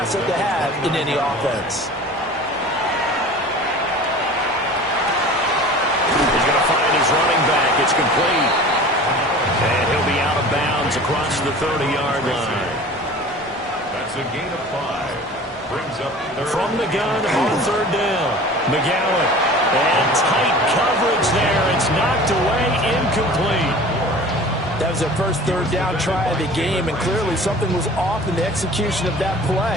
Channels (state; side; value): normal; both; correlation 0.41